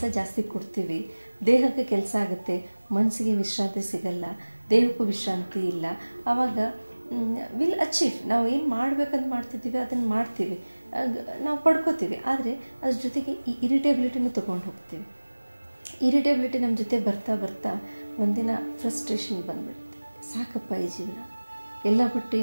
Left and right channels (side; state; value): both; inverted; correlation -1.00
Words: ಜಾಸ್ತಿ ಕೊಡ್ತೀವಿ, ದೇಹಕ್ಕೆ ಕೆಲಸ ಆಗುತ್ತೆ, ಮನಸ್ಸಿಗೆ ವಿಶ್ರಾಂತಿ ಸಿಗಲ್ಲ, ದೇಹಕ್ಕೂ ವಿಶ್ರಾಂತಿ ಇಲ್ಲ. ಆವಾಗ ವಿಲ್ ಅಚೀವ್, ನಾವು ಏನು ಮಾಡಬೇಕಂತ ಮಾಡ್ತಿದ್ದೀವಿ ಅದನ್ನು ಮಾಡ್ತೀವಿ, ನಾವು ಪಡ್ಕೋತೀವಿ. ಆದರೆ ಅದ್ರ ಜೊತೆಗೆ ಈ ಇರಿಟೇಬಿಲಿಟಿನೂ ತೊಗೊಂಡು ಹೋಗ್ತೀವಿ. ಇರಿಟೇಬಿಲಿಟಿ ನಮ್ಮ ಜೊತೆ ಬರ್ತಾ ಬರ್ತಾ ಒಂದಿನ ಫ್ರಸ್ಟ್ರೇಷನ್ ಬಂದುಬಿಡುತ್ತೆ. ಸಾಕಪ್ಪ ಈ ಜೀವನ, ಎಲ್ಲ ಬಿಟ್ಟು